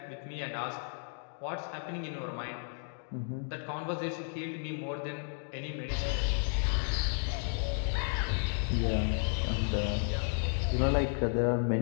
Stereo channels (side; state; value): right; silent; 56 dB below the other